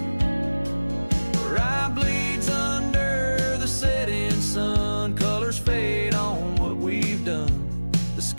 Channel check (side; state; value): both; inverted; correlation -1.00